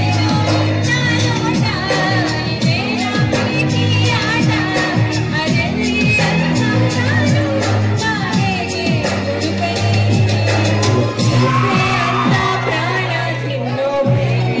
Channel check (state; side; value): identical; both; correlation 1.00